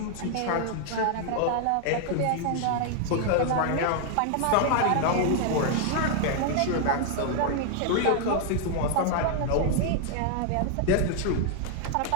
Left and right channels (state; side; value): different; both; correlation 0.00